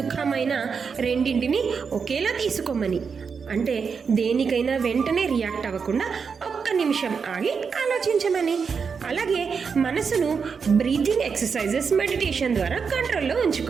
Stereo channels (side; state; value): left; quieter; 5.8 dB